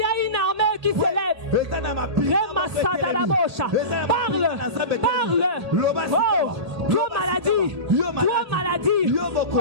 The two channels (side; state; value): left; late; 1.8 ms